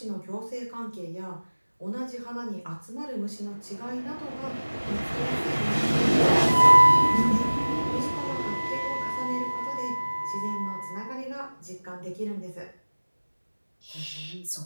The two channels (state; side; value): inverted; both; correlation -1.00